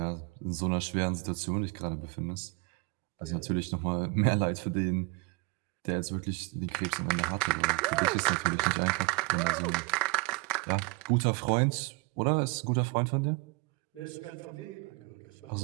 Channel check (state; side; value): quieter; left; 27.7 dB